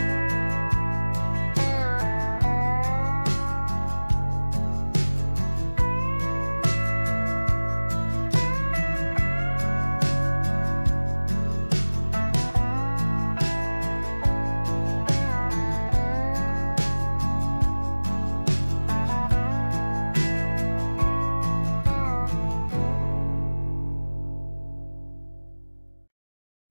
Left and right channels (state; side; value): inverted; both; correlation -1.00